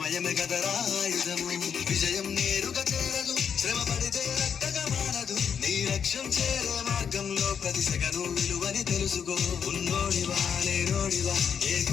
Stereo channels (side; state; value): right; quieter; 7.3 dB